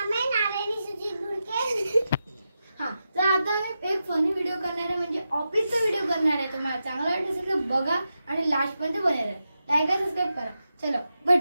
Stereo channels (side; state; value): both; inverted; correlation -0.89